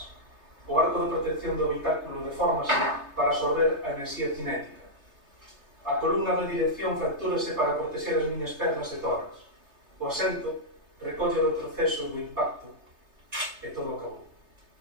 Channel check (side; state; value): left; late; 3.3 ms